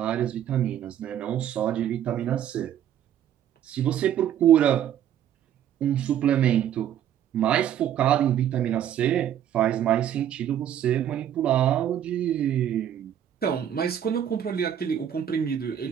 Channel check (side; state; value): left; quieter; 10.3 dB